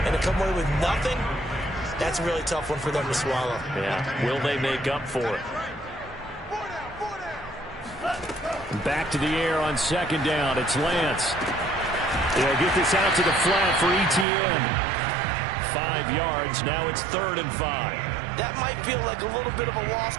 and to come away with nothing, that's a really tough one for them to swallow. Yeah, will they make up for it? Back to the air on 2nd down. It's Lance. They'll get this out to the flat for Etienne. 5 yards. Now it's 3rd and 5. That might feel like a little bit of a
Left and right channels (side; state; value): left; drops out; at 14.2 s